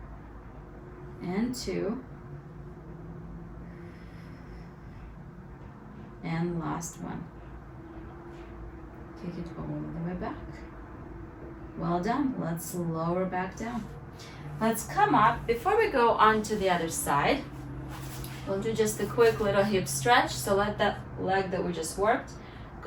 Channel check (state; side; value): identical; both; correlation 1.00